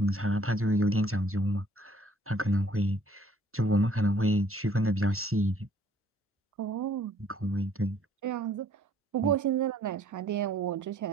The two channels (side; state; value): both; normal; correlation 0.60